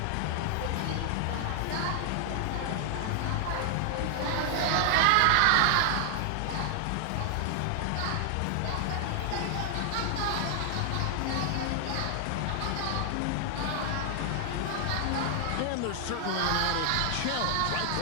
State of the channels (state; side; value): different; both; correlation 0.00